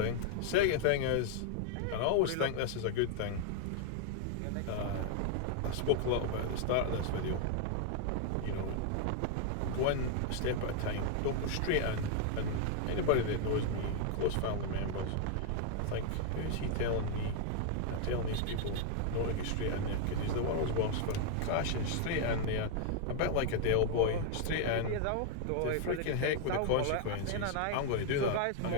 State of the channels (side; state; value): both; different; correlation 0.00